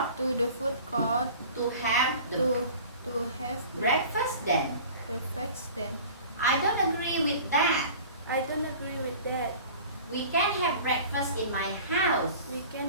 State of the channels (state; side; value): inverted; both; correlation -0.42